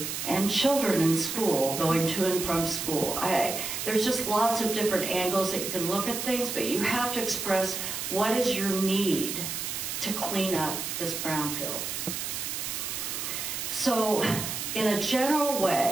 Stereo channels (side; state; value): right; noise; hiss, 4 dB below the sound